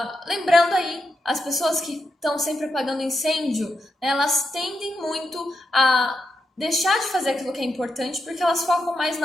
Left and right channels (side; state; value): both; normal; correlation 0.85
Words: lembrando aí, as pessoas que estão sempre apagando incêndio, né, elas tendem muito a deixar de fazer aquilo que é importante porque elas focam mais